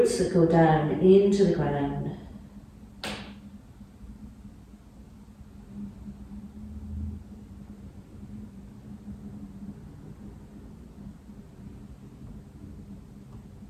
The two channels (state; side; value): identical; both; correlation 1.00